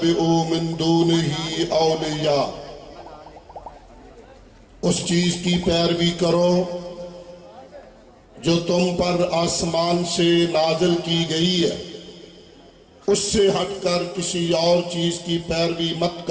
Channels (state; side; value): identical; both; correlation 1.00